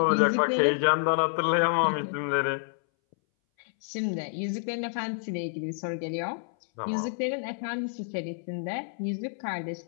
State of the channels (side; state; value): right; silent; 59 dB below the other